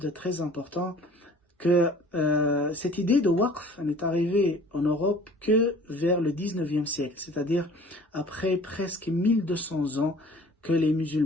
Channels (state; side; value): normal; both; correlation 0.49